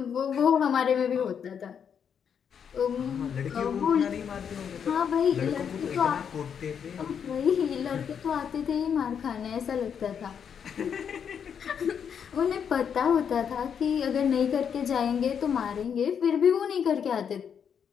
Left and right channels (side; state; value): right; quieter; 7.6 dB